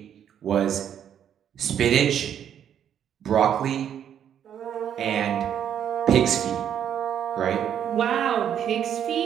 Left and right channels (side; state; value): left; quieter; 9.4 dB